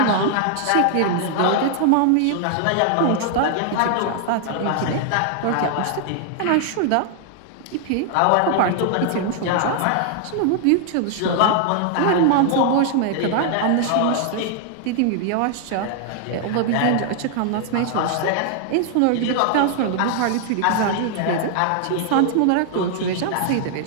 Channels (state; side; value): different; both; correlation 0.00